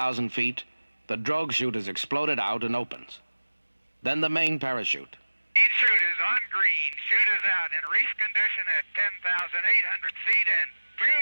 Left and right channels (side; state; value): both; inverted; correlation -1.00